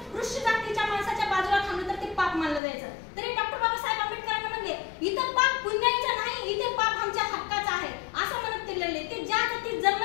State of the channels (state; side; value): drops out; right; at 2.6 s